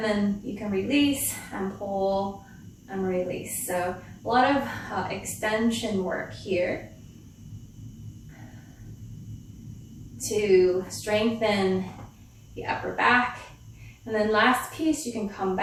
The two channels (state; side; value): identical; both; correlation 1.00